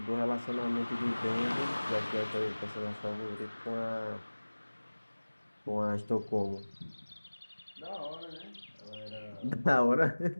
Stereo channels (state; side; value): inverted; both; correlation -1.00